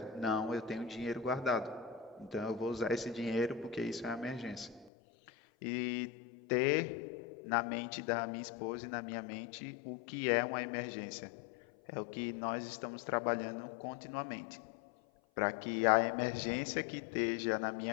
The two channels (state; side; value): drops out; right; at 4.9 s